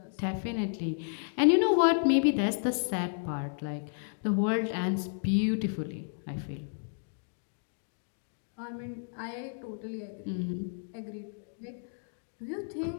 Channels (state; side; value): silent; right; digital silence